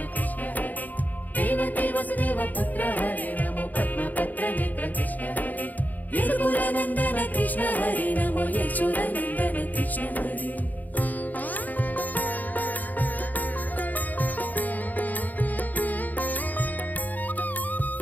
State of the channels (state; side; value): late; right; 0.082 ms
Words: కృష్ణ హరి దేవకీ వసుదేవ పుత్ర హరి నమో పద్మపత్ర నేత్ర కృష్ణ హరి యదుకుల నందన కృష్ణ హరి నమో యశోదానందన కృష్ణ హరి